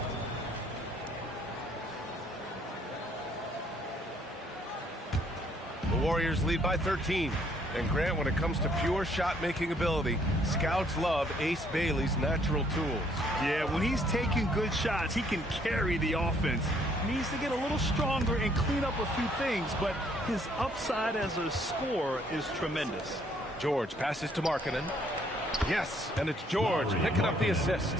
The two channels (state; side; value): normal; both; correlation 0.66